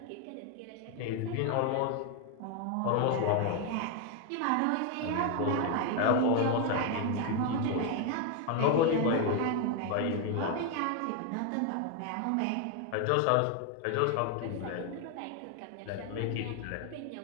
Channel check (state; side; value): different; both; correlation 0.01